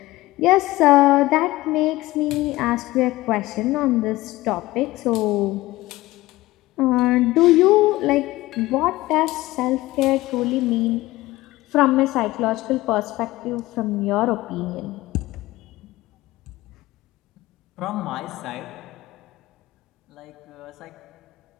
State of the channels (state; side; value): quieter; right; 18.4 dB